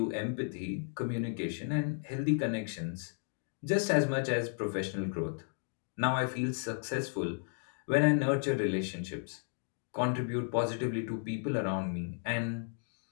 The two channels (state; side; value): silent; right; 55 dB below the other